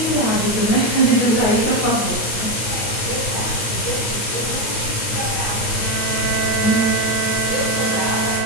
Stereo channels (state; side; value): late; right; 9.2 ms